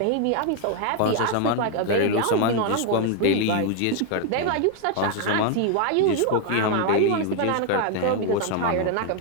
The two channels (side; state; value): both; different; correlation 0.00